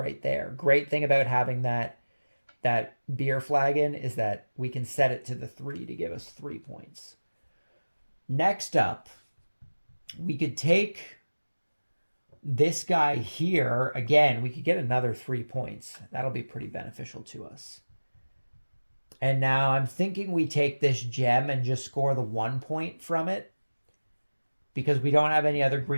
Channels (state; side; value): inverted; both; correlation -1.00